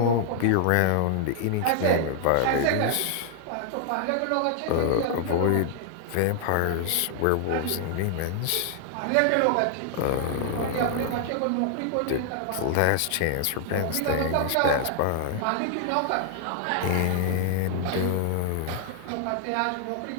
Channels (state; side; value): different; both; correlation 0.00